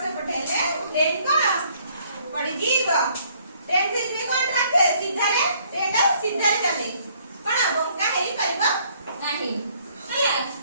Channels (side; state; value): both; inverted; correlation -0.64